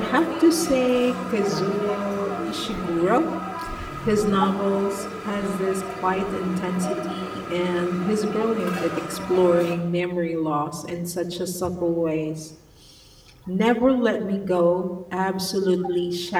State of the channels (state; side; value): identical; both; correlation 1.00